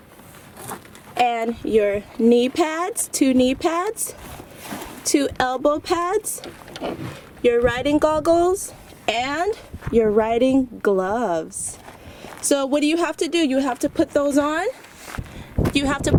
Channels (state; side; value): identical; both; correlation 1.00